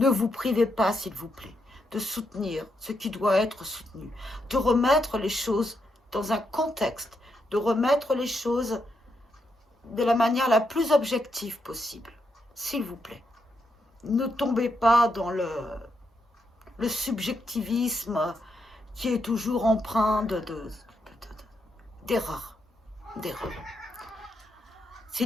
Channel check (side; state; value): both; normal; correlation 0.81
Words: vous privez pas, s'il vous plaît, de soutenir ce qui doit être soutenu, de remettre les choses dans un contexte, de remettre les choses de la manière la plus objective possible, s'il vous plaît. Ne tombez pas dans le subjectivisme qui est toujours empreint d'erreurs.